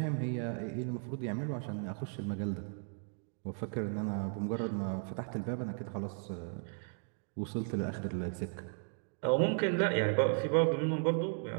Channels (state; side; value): silent; left; 54 dB below the other